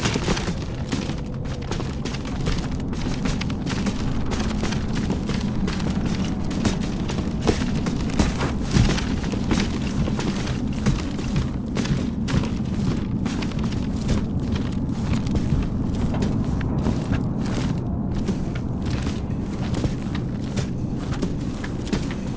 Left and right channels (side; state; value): both; identical; correlation 1.00